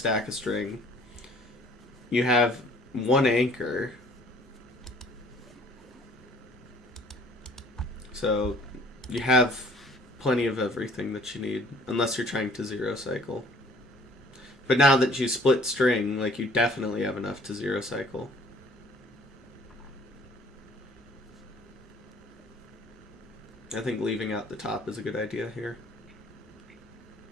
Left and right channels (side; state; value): both; normal; correlation 0.56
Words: of string. You have 1 anchor. So, you have plenty of everything that you need, unless you're trying to 0 cycle. But now that you split string, like, you definitely have enough to 0 cycle. I think leaving out the top is a good idea here.